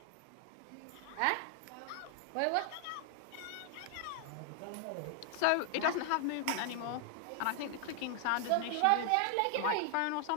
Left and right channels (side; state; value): both; different; correlation 0.00